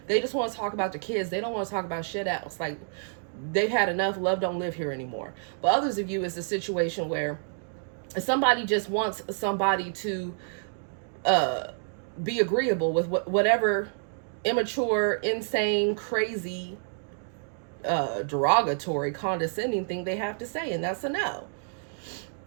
they just want to talk about the kids. They don't want to talk about shit else. Like, they've had enough. Love don't live here anymore. But others of you, it's a situation where somebody just wants somebody to be agreeable with whatever immature, insane, crazy, derogatory, condescending thing they have to say, and that's a no.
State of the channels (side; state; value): left; silent; digital silence